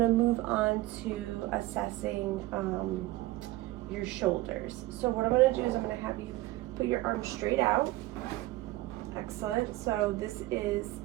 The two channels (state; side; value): quieter; left; 17.9 dB